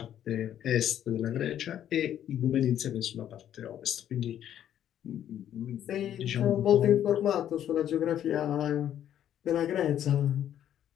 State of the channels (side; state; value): right; quieter; 10.6 dB